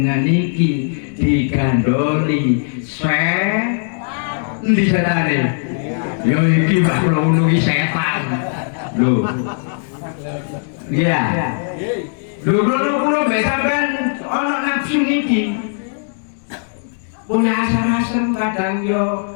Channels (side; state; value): right; silent; digital silence